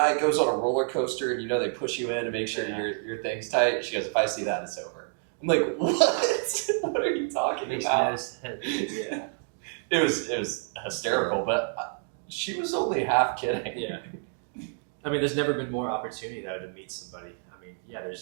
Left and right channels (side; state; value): left; silent; 59 dB below the other